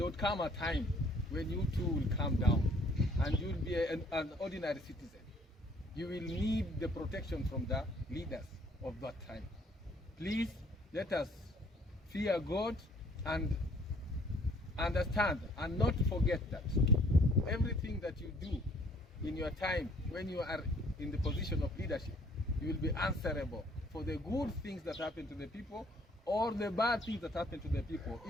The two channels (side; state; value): both; normal; correlation 0.60